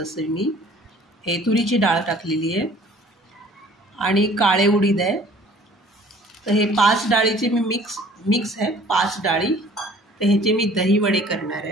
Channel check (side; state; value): both; normal; correlation 0.52